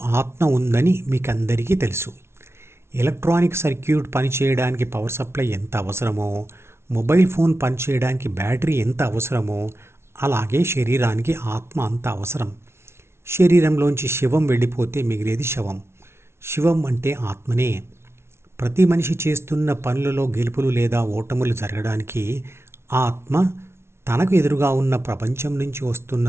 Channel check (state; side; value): late; left; 0.12 ms